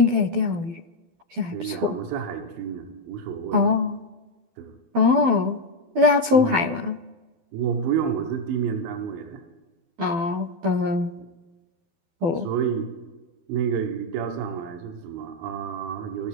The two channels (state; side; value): late; left; 12 ms